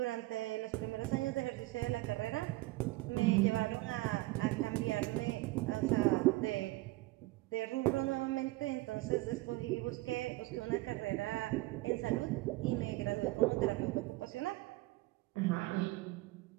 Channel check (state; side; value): quieter; left; 20.4 dB